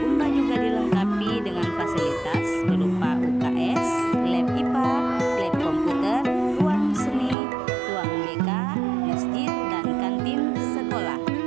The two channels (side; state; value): left; drops out; at 7.4 s